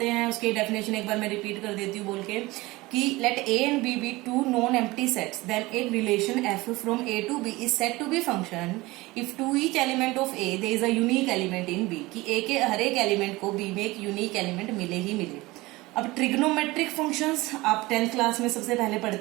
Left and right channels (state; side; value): quieter; left; 20.9 dB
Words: हैं उसकी डेफिनेशन एक बार मैं रिपीट कर देती हूँ बोल के कि let A and B be two non empty sets, then एक relation F from A to B is said to be function if to each element of A there is a unique element in B, कि A के हर एक element को B में एक unique element मिले ही मिले। अब ट्रिग्नोमेट्रिक फंक्शंस आप 10th क्लास में सबसे पहले